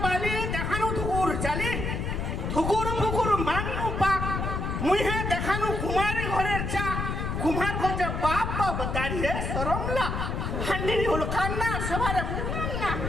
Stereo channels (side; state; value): left; noise; rumble, 2 dB below the sound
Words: দেখানো তো ওর চালে